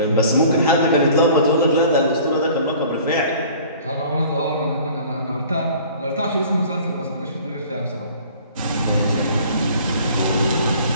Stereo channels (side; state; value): both; inverted; correlation -0.49